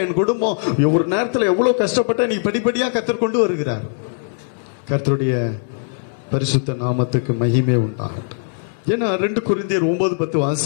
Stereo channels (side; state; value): right; silent; 64 dB below the other